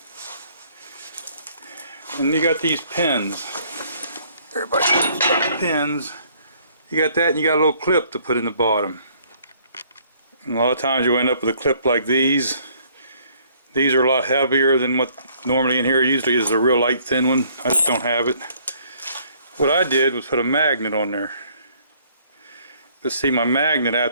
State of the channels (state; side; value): inverted; both; correlation -0.62